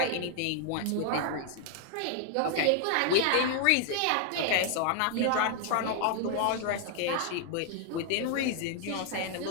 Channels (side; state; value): both; different; correlation 0.00